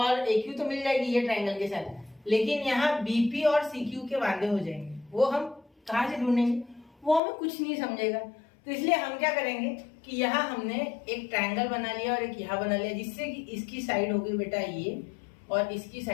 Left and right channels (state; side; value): drops out; right; at 7.2 s